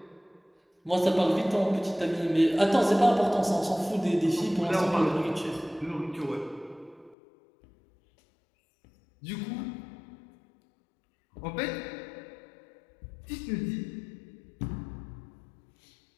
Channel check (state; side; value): drops out; right; at 7.2 s